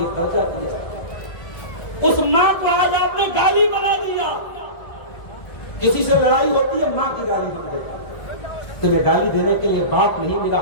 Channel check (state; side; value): late; right; 1.6 ms